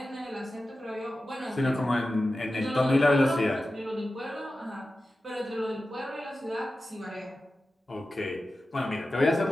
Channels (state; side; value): normal; both; correlation 0.94